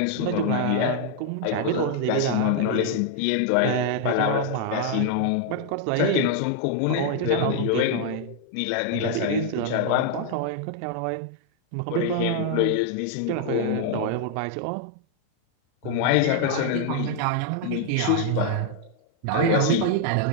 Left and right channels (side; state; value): both; different; correlation 0.00